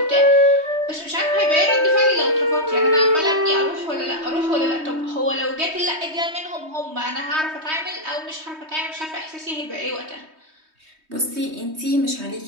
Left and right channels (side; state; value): left; late; 3.2 ms